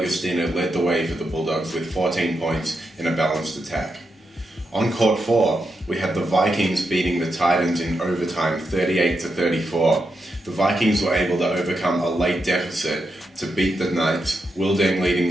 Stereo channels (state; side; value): normal; both; correlation 0.85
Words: led the way for the Bulldogs with 14 points in a balanced attack. On court four, we had the Vikings beating the Titans in overtime 38-34. The Vikings were able to overcome a late deficit to beat the Knights, Wilding leading